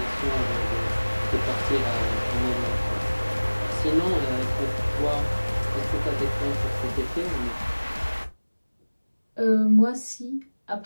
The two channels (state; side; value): inverted; both; correlation -1.00